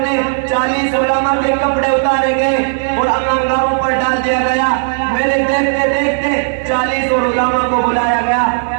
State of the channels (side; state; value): left; silent; digital silence